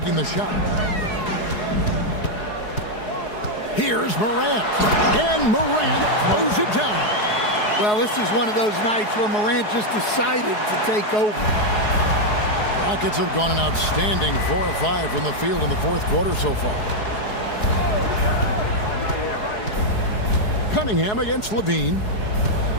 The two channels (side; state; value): right; late; 4.7 ms